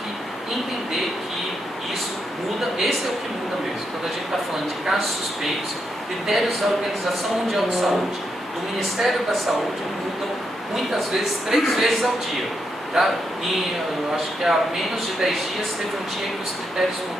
entender que isso muda, esse é o que muda mesmo. Quando a gente está falando de casos suspeitos, critérios da Organização Mundial de Saúde, do Ministério da Saúde, mudam muitas vezes, 3 vezes ao dia. Tá? E eu acho que há menos de 10 dias teve um dia que os critérios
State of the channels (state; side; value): normal; both; correlation 0.81